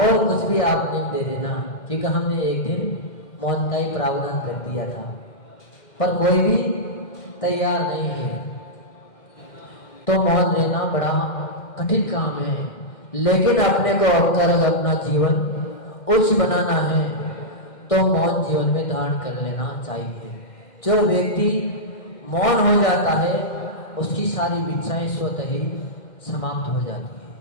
कुछ भी आप नियम दे देना, क्योंकि हमने एक दिन मौन का ही प्रावधान कर दिया था, पर कोई भी तैयार नहीं है। तो मौन रहना बड़ा कठिन काम है, लेकिन अपने को अगर अपना जीवन उच्च बनाना है तो मौन जीवन में धारण कर लेना चाहिए। जो व्यक्ति मौन हो जाता है उसकी सारी इच्छाएं स्वतः ही समाप्त हो जाती है,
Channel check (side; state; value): right; late; 2.1 ms